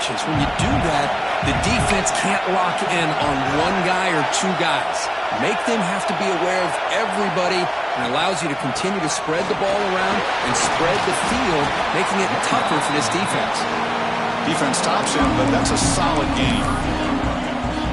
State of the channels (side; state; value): both; identical; correlation 1.00